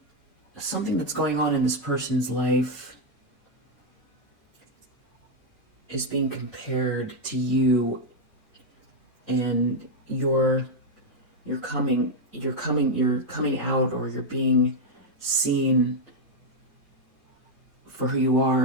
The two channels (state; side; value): normal; both; correlation 0.01